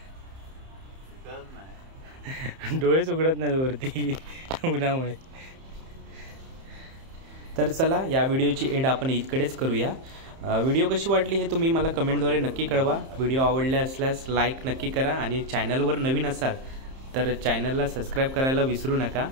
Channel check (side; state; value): left; late; 30 ms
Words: डोळेच उघडत नाही वरती उन्हामुळे. तर चला या व्हिडिओची एंड आपण इतकडेच करूया. व्हिडिओ कशी वाटली हे तुम्ही मला कमेंटद्वारे नक्की कळवा. व्हिडिओ आवडले असल्यास लाईक नक्की करा आणि चॅनलवर नवीन असाल तर चॅनलला सबस्क्राईब करायला विसरू नका.